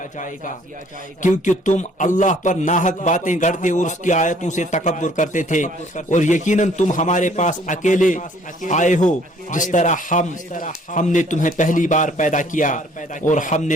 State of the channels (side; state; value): both; normal; correlation 0.59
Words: کیونکہ تم اللہ پر ناحق باتیں گڑتے اور اس کی آیتوں سے تکبر کرتے تھے، اور یقیناً تم ہمارے پاس اکیلے آئے ہو جس طرح ہم نے تمہیں پہلی بار پیدا کیا، اور ہم